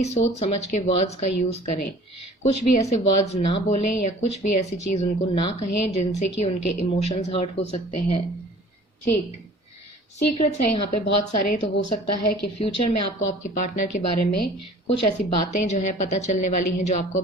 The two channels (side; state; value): both; normal; correlation 0.48